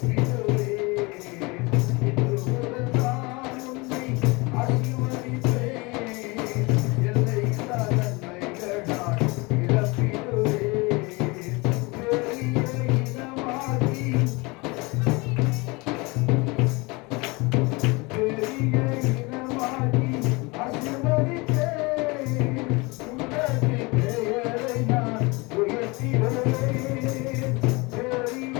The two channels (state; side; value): quieter; right; 26.1 dB